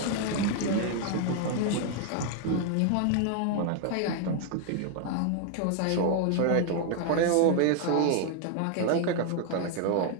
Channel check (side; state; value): both; different; correlation 0.00